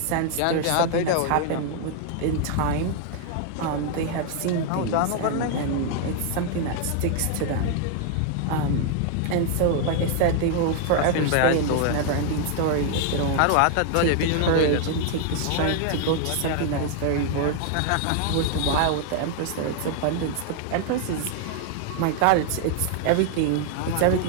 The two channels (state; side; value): different; both; correlation 0.00